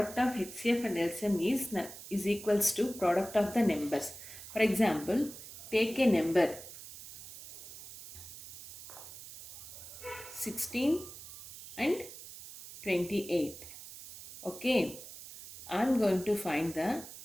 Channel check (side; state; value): right; noise; hiss, 14 dB below the sound